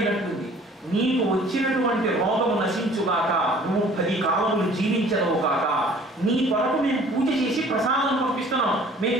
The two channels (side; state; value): both; normal; correlation 0.52